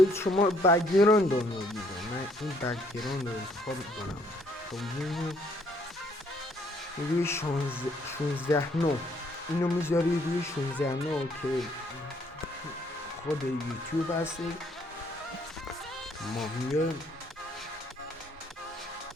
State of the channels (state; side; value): normal; both; correlation 0.66